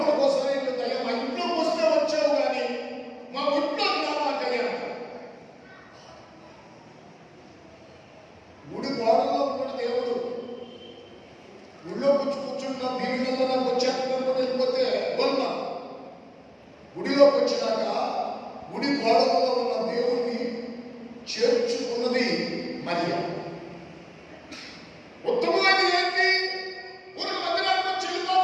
ఒకసారి ఏంటంటే మా ఇంట్లోకి వస్తే వచ్చావు కానీ మా ఇంట్లోకి రావాలని గుడి గోడల్లో కూడా దేవుడు గుడిలో కూర్చుంటున్నా దీనిలో నాకు వచ్చేటప్పుడు వెళ్ళిపోతే వెళ్తాం. గుడిలోకి వచ్చినాక గుడి గోడలలో ఉన్న దేవుణ్ణి చేర్చుకున్నది మరియ. ఉత్తమమైన ఏంటి? ఊరికి మందిరానికి వచ్చి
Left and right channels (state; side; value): identical; both; correlation 1.00